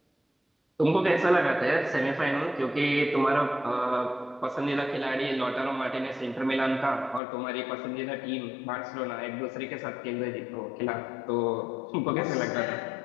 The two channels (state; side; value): drops out; right; at 7.2 s